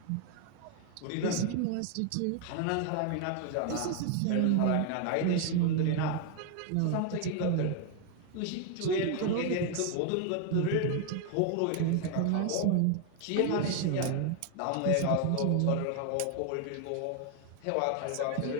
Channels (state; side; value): different; both; correlation 0.01